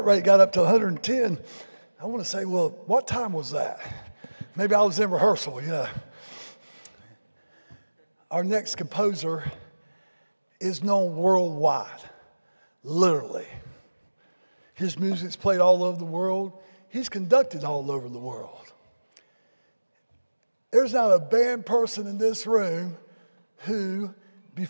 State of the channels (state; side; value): inverted; both; correlation -1.00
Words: rate got up to 110. I want to say, well, what time was that? Maybe I was in rehearsal, you know. Our next composer is known worldwide, literally. His music's played all over the world. He's conducted all over the world. There's not a band person in this room who,